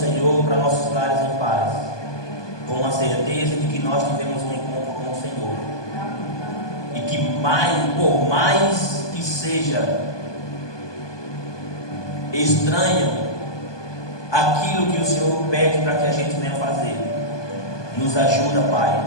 para nossos lares em paz, com a certeza de que nós tivemos um encontro com o Senhor, e que por mais que seja estranho aquilo que o Senhor pede para que a gente venha fazer, nos ajuda, Pai,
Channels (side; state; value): right; late; 1.2 ms